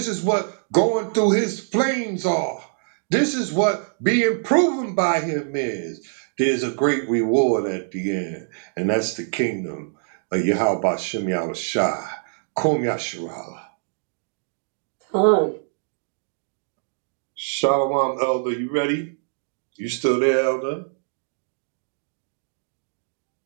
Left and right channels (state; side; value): silent; left; digital silence